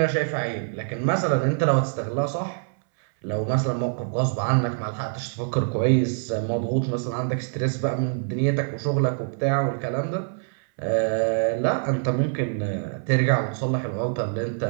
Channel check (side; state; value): left; silent; 62 dB below the other